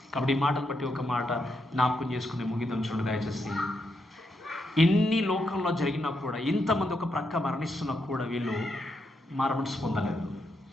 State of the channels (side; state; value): both; normal; correlation 0.81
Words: కాబట్టి ఈ మాటను బట్టి ఒక మాట జ్ఞాపకం చేసుకుని ముగిద్దాం. చూడండి దయచేసి, ఇన్ని లోకంలో జరిగినా కూడా, ఇంతమంది ఒక ప్రక్క మరణిస్తున్నా కూడా వీళ్ళు మారు మనసు పొందలేదు,